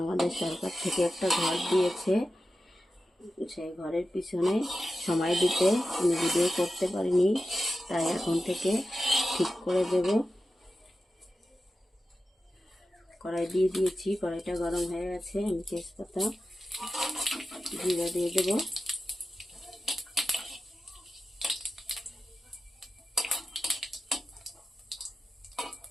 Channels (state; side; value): normal; both; correlation 0.93